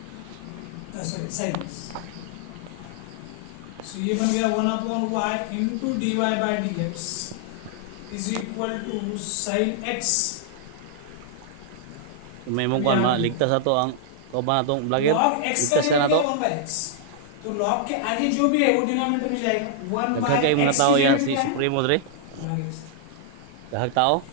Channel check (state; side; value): different; both; correlation -0.01